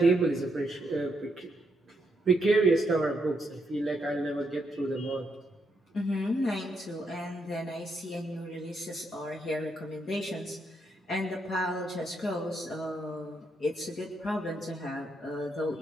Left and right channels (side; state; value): both; normal; correlation 0.79